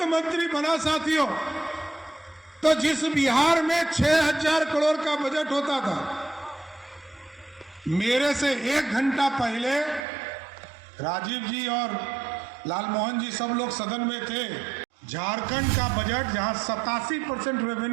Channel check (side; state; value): left; drops out; at 10.1 s